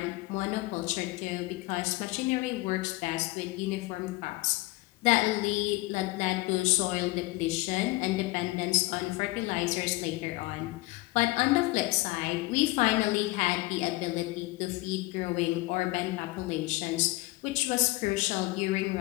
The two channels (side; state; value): right; quieter; 21.0 dB